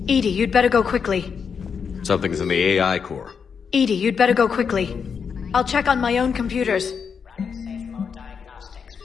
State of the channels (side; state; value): right; quieter; 6.4 dB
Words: Edie, you'd better go quickly. Something's in the AI core. Edie, you'd better go quickly. I'll check on my own computers. Running safe mode diagnostics.